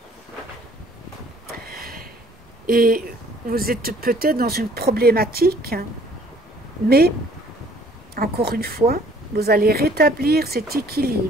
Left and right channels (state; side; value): normal; both; correlation 0.58